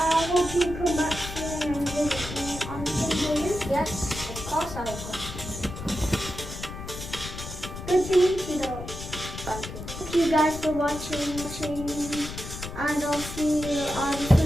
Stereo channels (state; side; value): noise; left; rumble, 9 dB below the sound